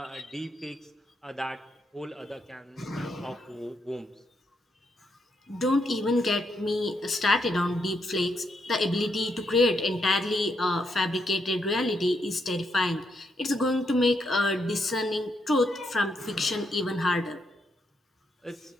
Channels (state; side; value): normal; both; correlation 0.78